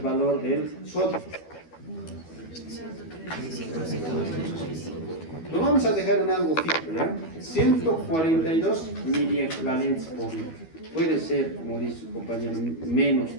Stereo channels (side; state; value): right; late; 12 ms